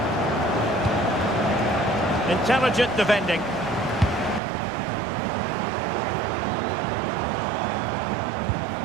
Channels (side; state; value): left; drops out; at 4.4 s